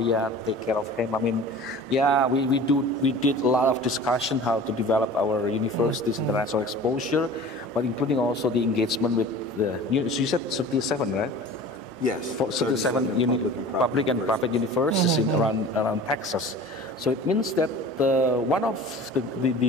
take care of him. I mean, we did a lot of discussion how to develop our university's international exposure, but including also the engagement with you said 37, right? Yes. For 37 public and private universities in around Texas. So it means that one of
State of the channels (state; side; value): normal; both; correlation 0.41